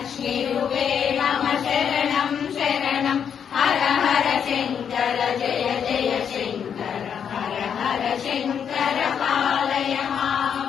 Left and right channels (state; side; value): quieter; right; 7.8 dB